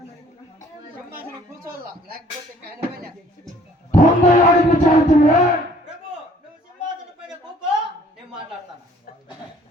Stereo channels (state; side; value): normal; both; correlation 0.57